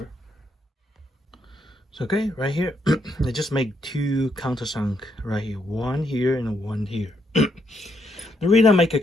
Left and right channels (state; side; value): normal; both; correlation 0.76